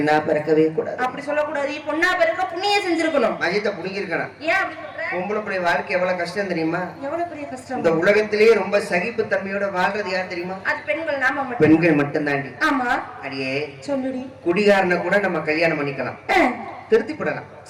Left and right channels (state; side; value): identical; both; correlation 1.00